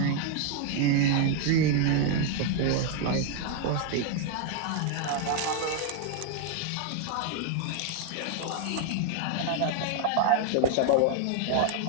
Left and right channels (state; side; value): different; both; correlation 0.00